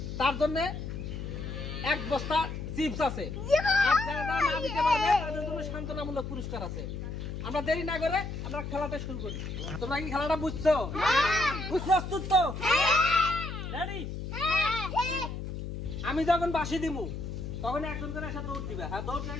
তার জন্য এক বস্তা চিপস আছে, আর যারা না দিতে পারবে তাদের জন্য সান্ত্বনামূলক পুরস্কার আছে। আমরা দেরি না করে আমরা খেলাটা শুরু করি। তোমরা কি খেলাটা বুঝছো? প্রস্তুত তো? রেডি? আমি যখন বাঁশি দিব তখন একজন করে এসে দৌড় দিবে। হ্যাঁ, দৌড় দিয়ে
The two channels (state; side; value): noise; left; hum, 6 dB below the sound